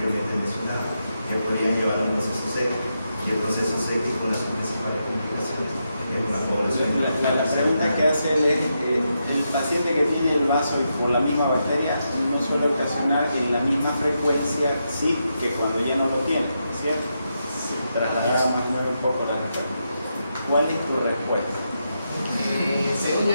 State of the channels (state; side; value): inverted; both; correlation -0.84